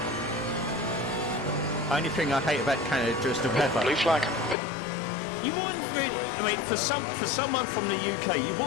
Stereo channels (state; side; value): drops out; right; at 4.5 s